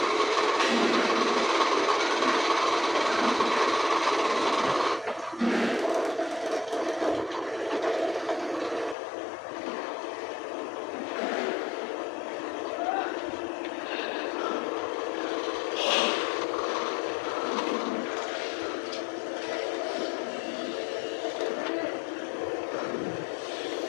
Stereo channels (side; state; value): right; drops out; at 9.0 s